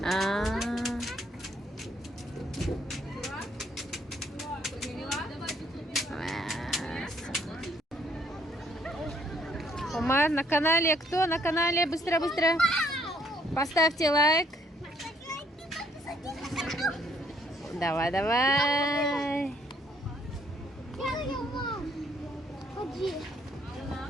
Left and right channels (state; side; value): normal; both; correlation 0.66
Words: Умар на канале. Кто на канале? Быстро. Поставьте лайк. Давай. Ходи.